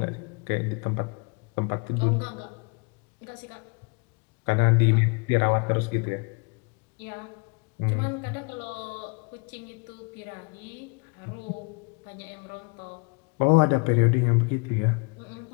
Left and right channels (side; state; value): right; quieter; 32.6 dB